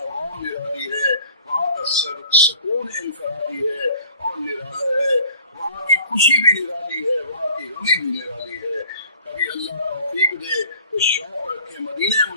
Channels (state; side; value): inverted; both; correlation -0.51